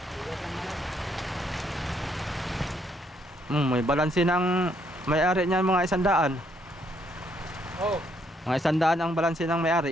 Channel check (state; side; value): normal; both; correlation 0.71